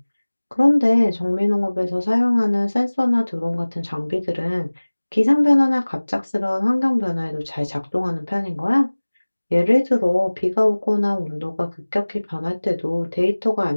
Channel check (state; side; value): inverted; both; correlation -1.00